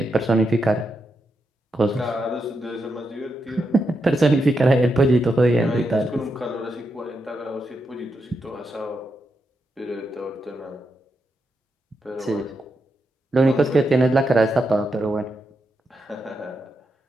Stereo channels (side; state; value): both; normal; correlation 0.84